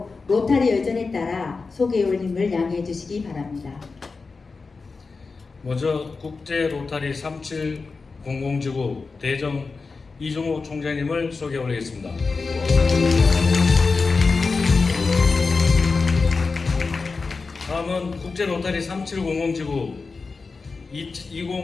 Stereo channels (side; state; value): right; quieter; 4.3 dB